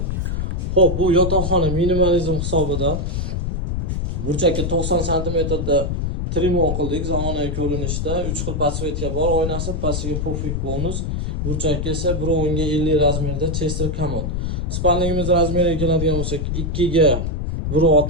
Xo'p, bu yotoqxona minimalizm hisobida burchakka 90 cm da trimon qildik. Zamonaviy ko'rinishda 3 xil podsvetka bor. Oynasi pastiga pufik bonus. Burchakka esa 1.10 ga 50 razmerda Chester komod. Spalnigimiz razmeriga keladigan bo'lsak 2 ga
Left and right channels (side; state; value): left; noise; rumble, 1 dB below the sound